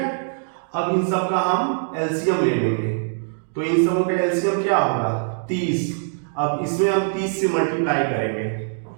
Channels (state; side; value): silent; left; digital silence